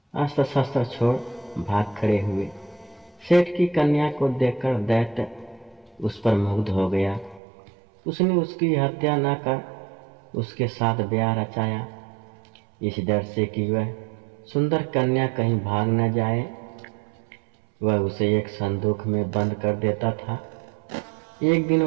अस्त्र शस्त्र छोड़ भाग खड़े हुए। सेठ की कन्या को देखकर दैत्य उस पर मुग्ध हो गया। उसने उसकी हत्या न कर उसके साथ ब्याह रचाया, इस डर से कि वह सुंदर कन्या कहीं भाग न जाए। वह उसे एक संदूक में बंद कर देता था। एक दिन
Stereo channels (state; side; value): drops out; left; at 7.4 s